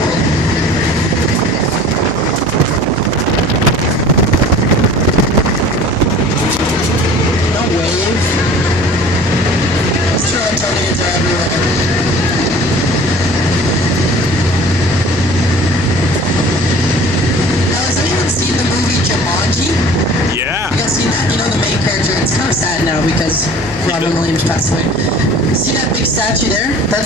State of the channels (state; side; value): noise; left; hum, 17 dB below the sound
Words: No wave. Those Torontonians are everywhere. Now, has anyone seen the movie Jumanji? Yeah. You guys seen that? You know the main character? It's kind of sad now because Robin Williams passed away. See that big statue there?